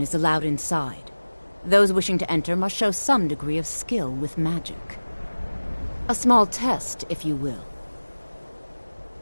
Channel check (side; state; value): both; inverted; correlation -1.00